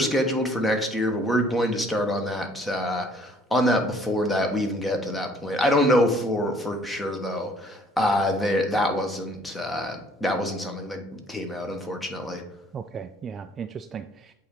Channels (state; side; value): normal; both; correlation 0.59